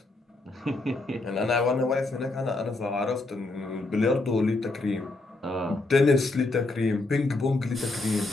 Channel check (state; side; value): quieter; right; 3.1 dB